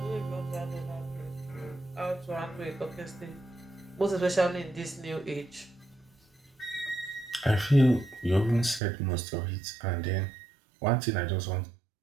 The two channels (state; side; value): drops out; left; at 8.8 s